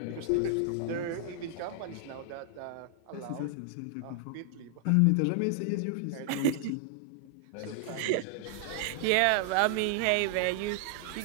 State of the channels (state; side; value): different; both; correlation 0.00